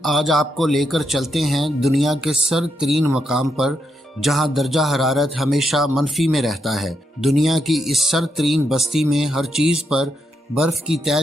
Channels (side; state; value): both; normal; correlation 0.81